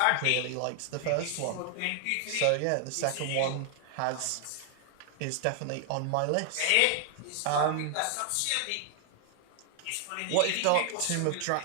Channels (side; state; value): both; different; correlation 0.00